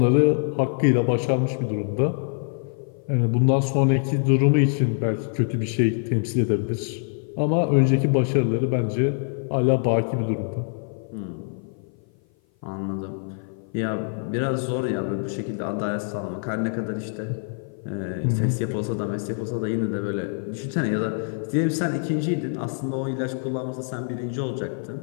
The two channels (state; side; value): silent; right; 56 dB below the other